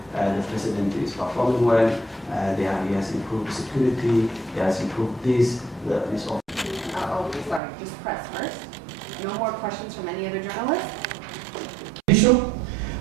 the president is performing well, he has improved security, he has improved this. Sorry, just press first. No more questions from any other journalists?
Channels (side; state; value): left; drops out; at 7.6 s